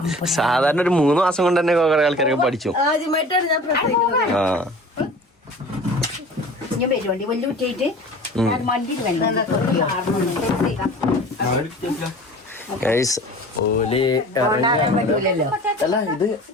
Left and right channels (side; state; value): both; normal; correlation 0.43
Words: സാധാരണ ഒരു 3 മാസം കൊണ്ട് തന്നെ കുറെ ആൾക്കാരൊക്കെ പഠിച്ചു. ആ